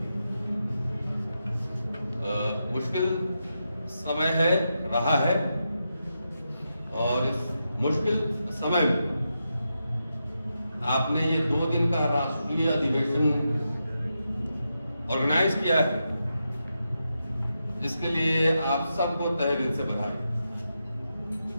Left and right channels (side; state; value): both; inverted; correlation -0.87